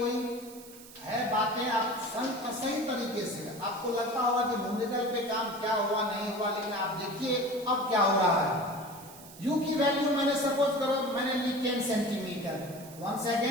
है बातें, आप सही तरीके से आपको लगता होगा कि न्यूमेरिकल पे काम क्या हुआ नहीं हुआ, लेकिन आप देखिए अब क्या हो रहा है। u की वैल्यू मैंने सपोज करो मैंने ली 10 centimetre, one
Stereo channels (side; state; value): right; noise; hiss, 18 dB below the sound